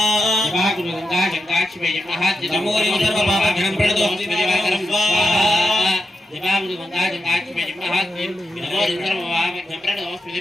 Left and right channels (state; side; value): normal; both; correlation 0.87